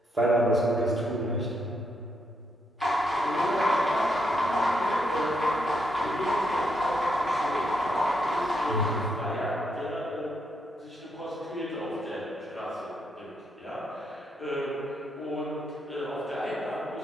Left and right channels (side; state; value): both; normal; correlation 0.78